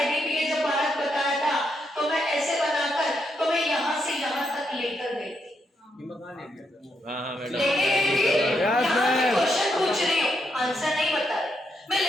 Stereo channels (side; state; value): both; normal; correlation 0.80